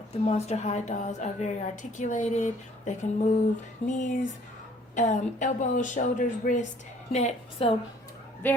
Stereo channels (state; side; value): normal; both; correlation 0.58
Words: the Monster High dolls are very articulated. They can move knees, elbows, shoulders, wrist, neck. So